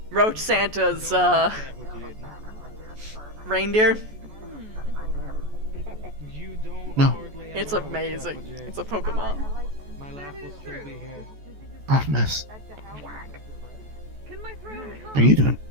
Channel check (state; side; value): late; left; 14 ms